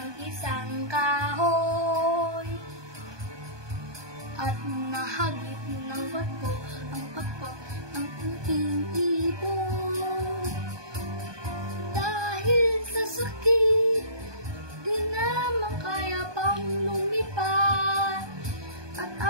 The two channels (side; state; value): left; late; 1.2 ms